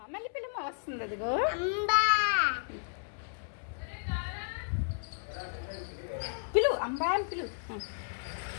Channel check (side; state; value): right; silent; 56 dB below the other